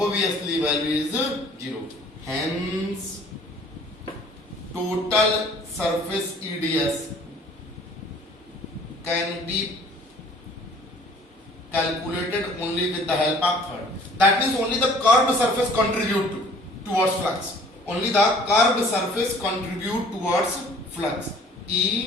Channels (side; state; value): both; normal; correlation 0.53